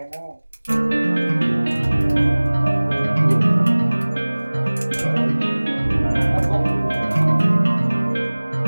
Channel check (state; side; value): inverted; both; correlation -1.00